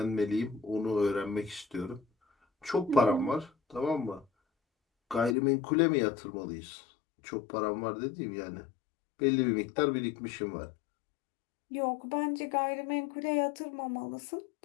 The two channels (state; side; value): drops out; right; at 5.4 s